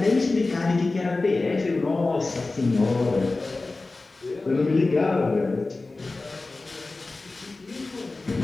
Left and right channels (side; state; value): right; quieter; 3.4 dB